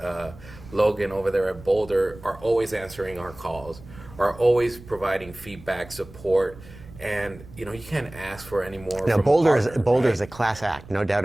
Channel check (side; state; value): right; noise; rumble, 19 dB below the sound